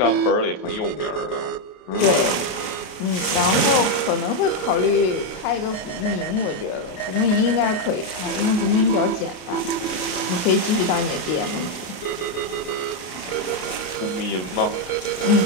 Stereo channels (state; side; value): late; right; 32 ms